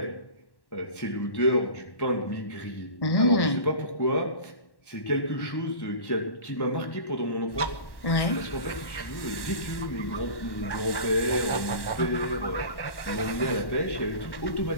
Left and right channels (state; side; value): late; right; 1.1 ms